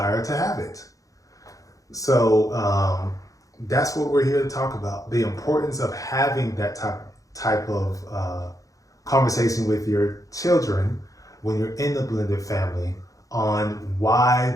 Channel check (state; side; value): late; right; 0.16 ms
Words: to have it. So that's what we're here to talk about, the importance of having that type of conversation with your children when you're in the blended family on why